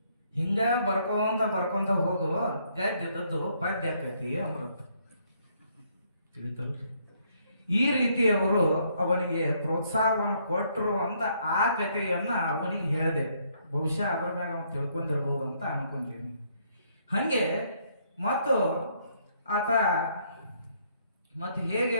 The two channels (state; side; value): inverted; both; correlation -0.70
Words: ಹಿಂಗ ಬರ್ಕೊಂತ ಹೋಗು, ಗದ್ದೆದದ್ದು ಪದ್ಯ ಆಕೈತಿ ಅಂದ್ರಂತ. ತಿಳಿತಲ್ರಿ? ಈ ರೀತಿ ಅವರು ಅವನಿಗೆ ಪ್ರೋತ್ಸಾಹವನ್ನು ಕೊಟ್ಟರು ಅಂತ ಆ ಕಥೆಯನ್ನ ಅವನಿಗೆ ಹೇಳಿದೆ. ಬಹುಶಃ ಅದ್ರ ಮ್ಯಾಗ ಅವನು ತಿಳ್ಕೊಂಡಿರ್ಬೋದು ಅಂತ ಅನ್ಕೊಂತೀನಿ. ಹಾಗೆ ಮತ್ತು ಆತ ಮತ್ತೆ ಹೇಗೆ